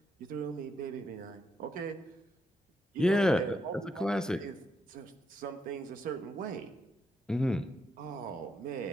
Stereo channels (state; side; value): normal; both; correlation 0.80